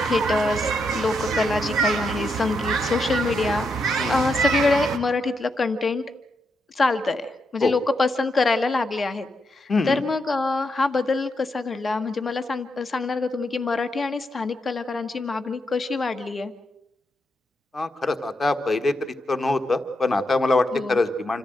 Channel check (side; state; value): both; normal; correlation 0.82